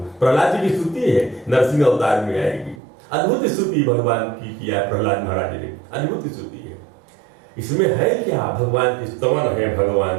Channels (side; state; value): left; drops out; at 2.8 s